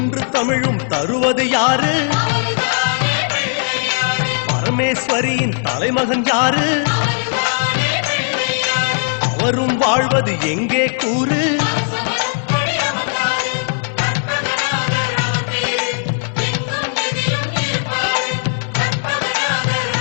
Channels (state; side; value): silent; right; 64 dB below the other